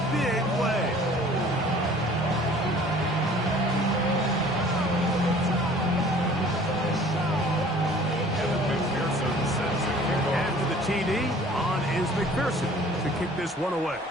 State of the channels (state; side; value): normal; both; correlation 0.50